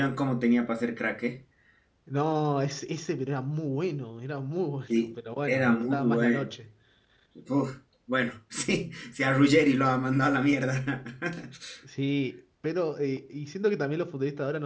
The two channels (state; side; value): identical; both; correlation 1.00